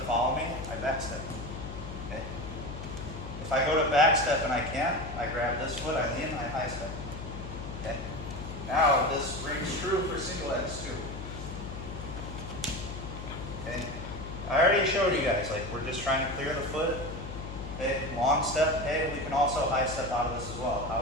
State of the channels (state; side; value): noise; left; hum, 9 dB below the sound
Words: follow me, I backstep. Okay. If I go to backstep and I can't, I grab this foot, I lean, I high step. Okay. Now this rings true for single X too. Okay. I already showed you guys, like we're just trying to clear the foot. Okay. Long step, okay, we can also high step out of this as well.